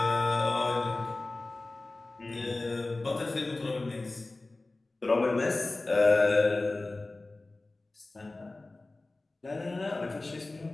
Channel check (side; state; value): right; quieter; 3.1 dB